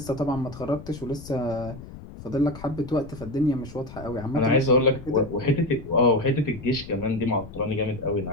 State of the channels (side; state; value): left; noise; rumble, 15 dB below the sound